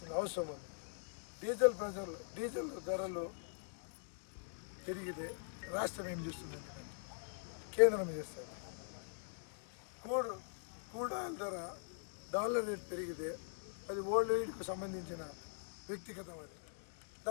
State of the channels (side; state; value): right; silent; digital silence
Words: అవసరం ఉంది. డీజిల్ ధరలు పెరిగితే రాష్ట్రం ఏం చేస్తుంది? కేంద్రం చేస్తుంది. క్రూడ్ ఆయిల్ ధర డాలర్ రేట్ పెరిగితే అది వరల్డ్ వైడ్కు సంబంధించిన వ్యక్తిగతం. అది